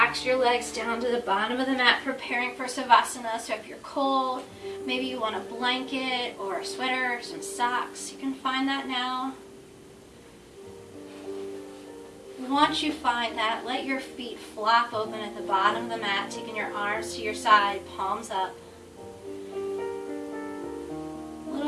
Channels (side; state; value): both; identical; correlation 1.00